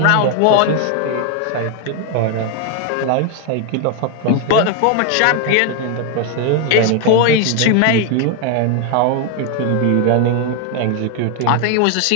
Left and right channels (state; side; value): different; both; correlation 0.01